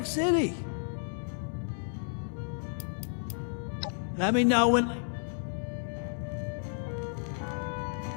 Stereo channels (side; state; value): right; silent; digital silence